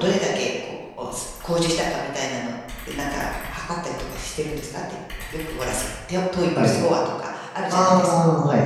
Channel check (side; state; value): both; identical; correlation 1.00